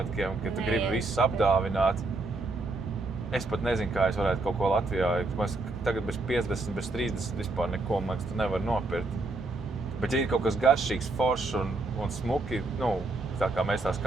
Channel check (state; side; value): quieter; left; 3.2 dB